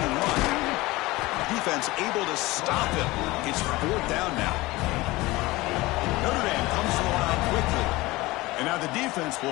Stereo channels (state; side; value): quieter; right; 20.4 dB